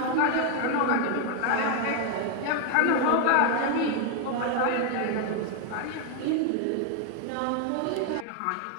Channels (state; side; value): different; both; correlation 0.01